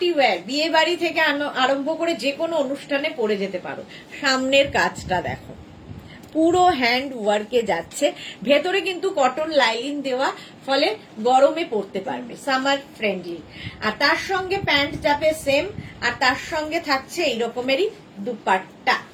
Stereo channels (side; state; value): both; identical; correlation 1.00